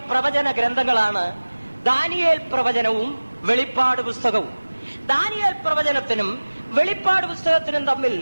പ്രവചന ഗ്രന്ഥങ്ങളാണ് ദാനിയേൽ പ്രവചനവും വെളിപ്പാട് പുസ്തകവും. ദാനിയേൽ പ്രവചനത്തിനും വെളിപ്പാട് പുസ്തകത്തിനും തമ്മിൽ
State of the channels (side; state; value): both; inverted; correlation -1.00